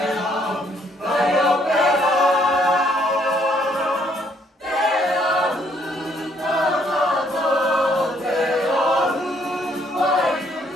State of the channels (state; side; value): normal; both; correlation 0.67